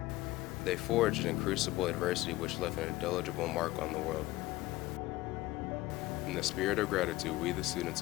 They forged in crucible adversity which left an indelible mark on the world. In the spirit of gratitude, we, the students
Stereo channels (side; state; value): right; quieter; 18.1 dB